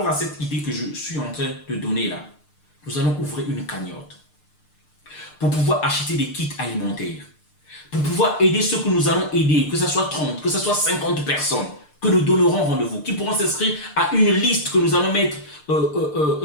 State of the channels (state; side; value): late; right; 6.7 ms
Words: à cette idée que je suis en train de donner là, nous allons ouvrir une cagnotte pour pouvoir acheter des kits alimentaires, pour pouvoir aider ceux que nous allons aider, que ce soit 30, que ce soit 50 personnes, que nous donnerons rendez-vous, qui pourront s'inscrire à une liste que nous allons mettre